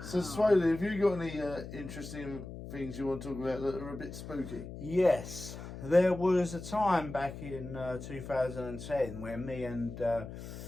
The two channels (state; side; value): noise; left; hum, 11 dB below the sound